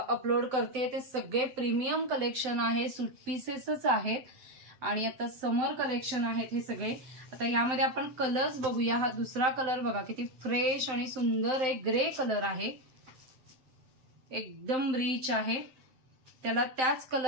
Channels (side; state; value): left; late; 7.7 ms